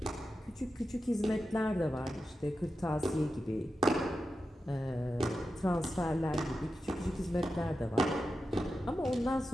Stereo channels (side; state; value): both; normal; correlation 0.91